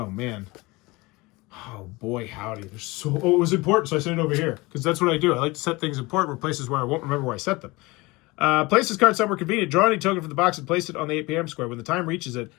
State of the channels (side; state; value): right; quieter; 23.0 dB